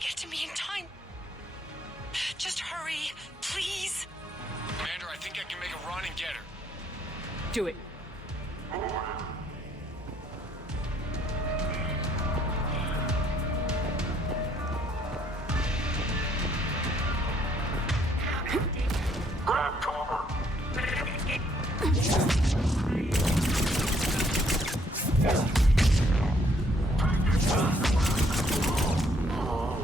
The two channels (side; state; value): both; normal; correlation 0.67